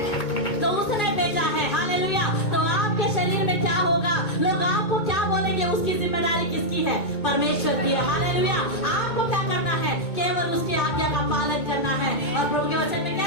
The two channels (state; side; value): late; right; 2.2 ms